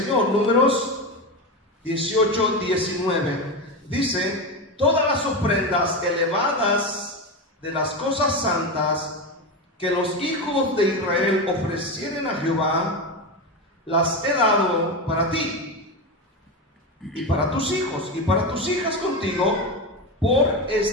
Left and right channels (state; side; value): normal; both; correlation 0.17